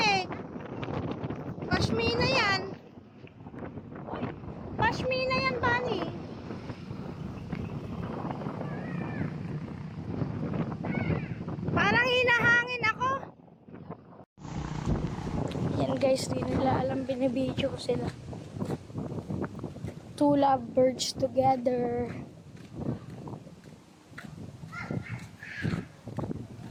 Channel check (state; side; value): identical; both; correlation 1.00